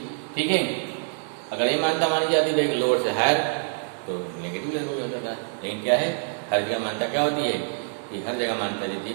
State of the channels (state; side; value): silent; left; digital silence